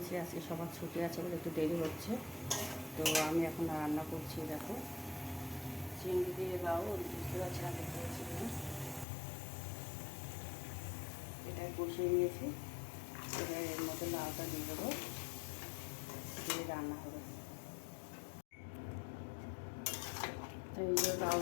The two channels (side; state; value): right; drops out; at 9.1 s